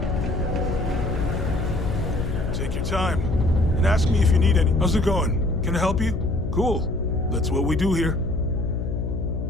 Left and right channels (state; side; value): noise; left; hum, 3 dB below the sound